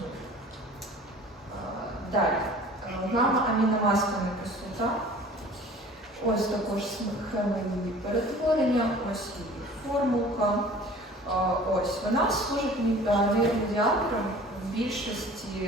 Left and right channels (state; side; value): normal; both; correlation 0.46